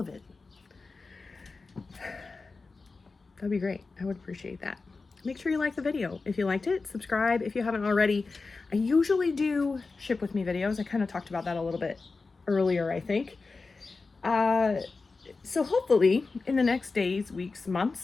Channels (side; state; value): right; quieter; 4.0 dB